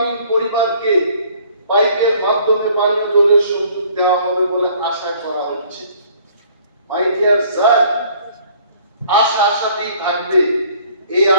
পরিবারকে পাইপের মাধ্যমে পানীয় জলের সংযোগ দেওয়া হবে বলে আশা করা হচ্ছে। মাই ডিয়ার স্যার, আশা আশাতেই থাকবে, এই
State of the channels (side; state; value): both; inverted; correlation -0.57